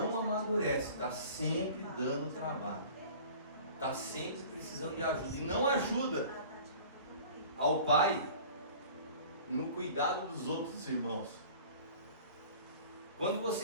amadurece, está sempre dando trabalho, está sempre precisando de ajuda, e não ajuda ao pai no cuidado dos outros irmãos. Quando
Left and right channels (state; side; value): inverted; both; correlation -0.44